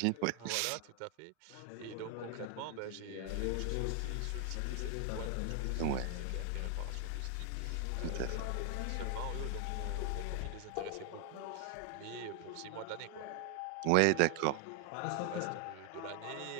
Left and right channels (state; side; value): different; both; correlation 0.00